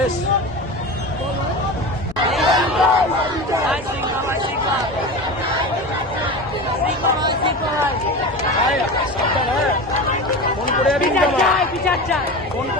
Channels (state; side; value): noise; left; rumble, 22 dB below the sound